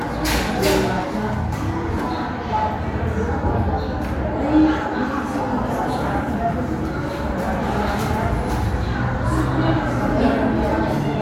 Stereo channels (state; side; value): identical; both; correlation 1.00